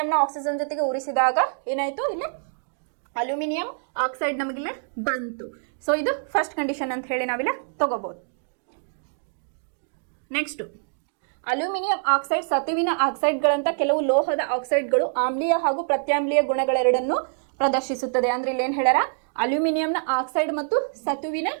ಆಕ್ಸಿಜನ್ ಜೊತೆಗೆ ಉರಿಸಿದಾಗ ಏನಾಯ್ತು ಇಲ್ಲಿ ಅಲ್ಯೂಮಿನಿಯಂ ಆಕ್ಸೈಡ್ ನಮಗಿಲ್ಲೇ ಬಂತು. ಸೊ ಇದು ಫಸ್ಟ್ ಕಂಡೀಷನ್ ಅಂತ ಹೇಳಿ ನಾವಿಲ್ಲ ತಗೋಬಹುದು. ನೆಕ್ಸ್ಟ್ ಅಲ್ಯೂಮಿನಿಯಂ ಆಕ್ಸೈಡ್ ಸತುವಿನ ಆಕ್ಸೈಡ್ಗಳಂತ ಕೆಲವು ಲೋಹದ ಆಕ್ಸೈಡ್ಗಳು ಆಮ್ಲೀಯ ಹಾಗೂ ಪ್ರತ್ಯಾಮ್ಲೀಯ ಗುಣಗಳೆರಡನ್ನು ಪ್ರದರ್ಶಿಸುತ್ತದೆ. ಅಂದ್ರೆ ಇಲ್ಲಿ ಏನ್ ಹೇಳ್ಯಾರ, ಅಲ್ಯೂಮಿನಿಯಂನ ಆಕ್ಸೈಡ್ ಮತ್ತು ಸತುವಿನ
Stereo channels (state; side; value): silent; left; digital silence